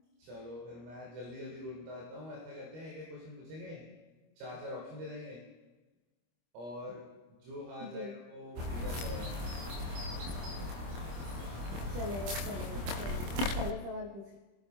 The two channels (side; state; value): left; late; 25 ms